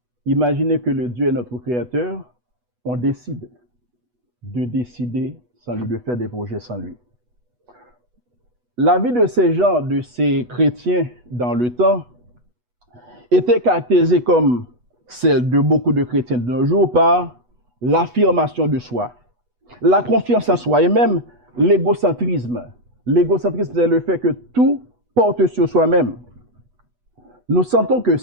Imaginez que le Dieu est notre créateur, on décide de décider sans lui, de faire des projets sans lui. La vie de ces gens, de ces chrétiens dans le temps, était caractérisée comme celle de beaucoup de chrétiens de nos jours par l'affirmation de soi, la confiance en soi et même l'égocentrisme. L'égocentrisme, c'est le fait que tout porte sur soi-même. Nous sentons que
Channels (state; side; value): late; left; 8.2 ms